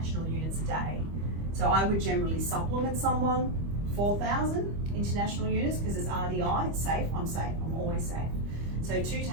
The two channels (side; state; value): left; late; 25 ms